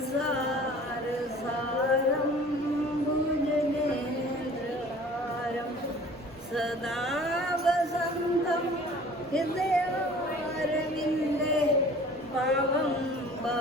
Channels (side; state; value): both; normal; correlation 0.47